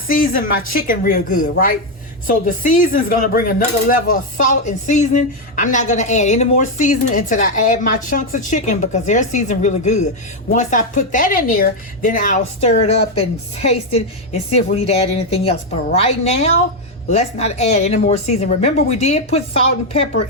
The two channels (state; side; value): normal; both; correlation 0.04